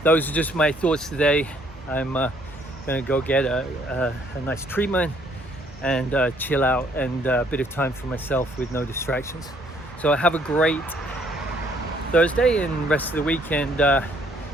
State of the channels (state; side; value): normal; both; correlation 0.65